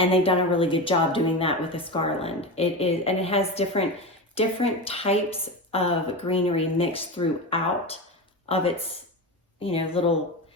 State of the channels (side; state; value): both; normal; correlation 0.22